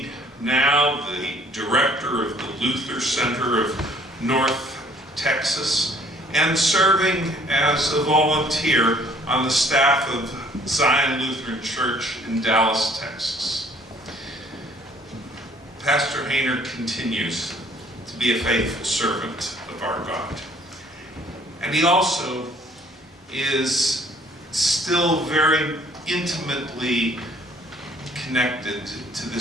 now the director of the Luther Center of North Texas, and serving as a volunteer on the staff of Zion Lutheran Church in Dallas, Texas. Pastor Hayner continues to be a faithful servant of our God. And he also is still very intimately connected to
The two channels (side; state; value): both; normal; correlation 0.59